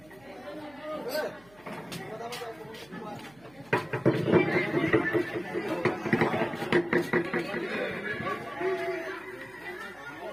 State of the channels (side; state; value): right; noise; hum, 26 dB below the sound